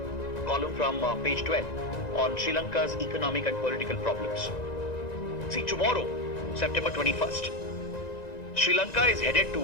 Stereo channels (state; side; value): late; right; 1.9 ms